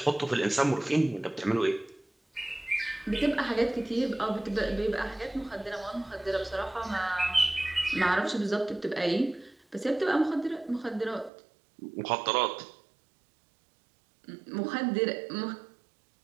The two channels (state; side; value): drops out; left; at 11.3 s